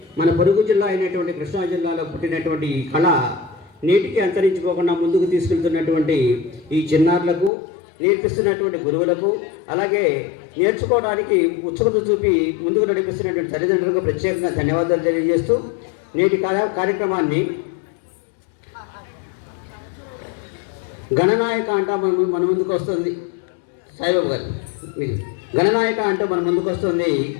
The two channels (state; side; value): drops out; right; at 7.5 s